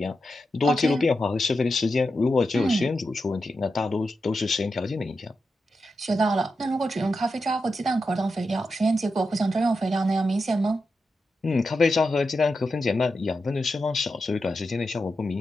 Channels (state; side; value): normal; both; correlation 0.88